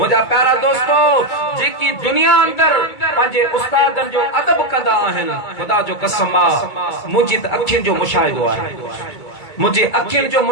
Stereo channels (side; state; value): right; late; 2.2 ms